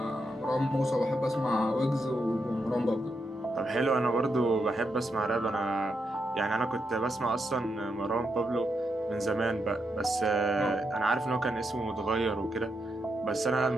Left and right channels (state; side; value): normal; both; correlation 0.83